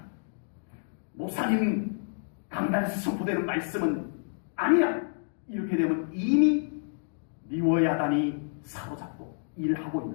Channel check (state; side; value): silent; right; digital silence